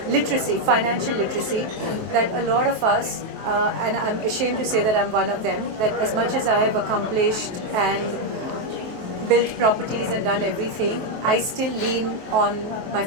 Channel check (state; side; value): late; left; 23 ms